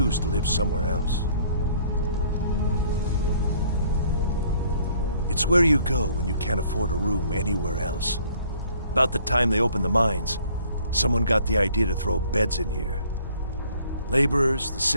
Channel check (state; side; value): inverted; both; correlation -0.59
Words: to live somewhere else. It's where you go when you can't afford a room anywhere else. About the time they opened the mines, someone got the idea to throw beds in here. Laborers, the